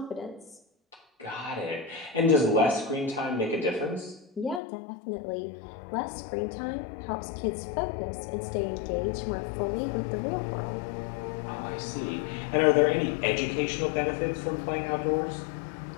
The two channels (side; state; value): right; drops out; at 4.6 s